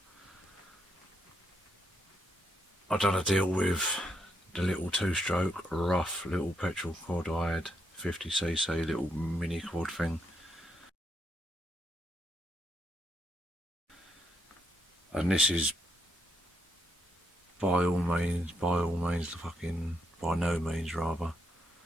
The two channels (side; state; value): both; normal; correlation 0.78